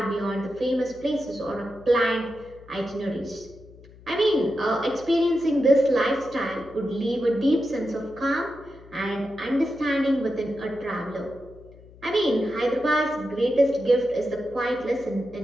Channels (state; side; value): noise; left; hum, 22 dB below the sound